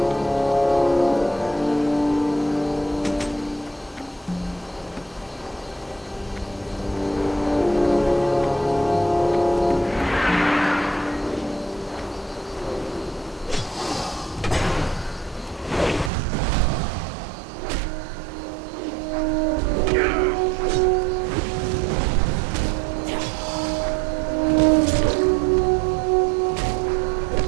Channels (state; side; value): drops out; left; at 16.1 s